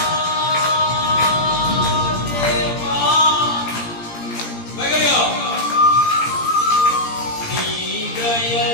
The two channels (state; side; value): late; right; 17 ms